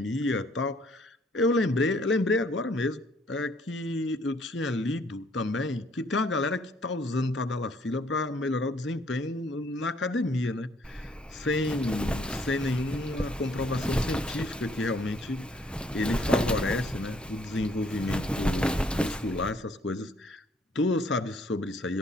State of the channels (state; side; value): normal; both; correlation 0.64